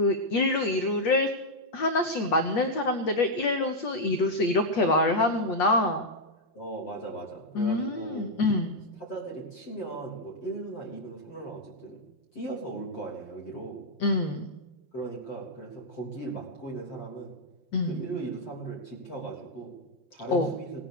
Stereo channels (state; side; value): late; right; 5.7 ms